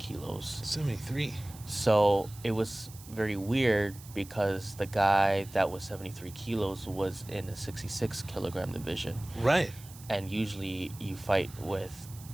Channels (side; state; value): right; noise; hiss, 19 dB below the sound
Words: 73. So it was very weird, because the guy that was 73 kilos was in the 66 kilogram division. Right. And usually you fight with